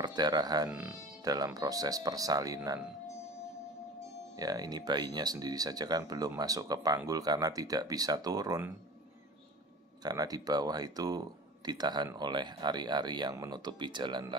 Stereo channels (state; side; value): normal; both; correlation 0.38